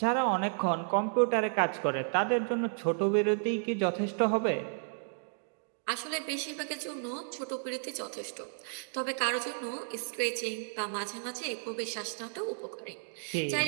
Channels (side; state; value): left; silent; digital silence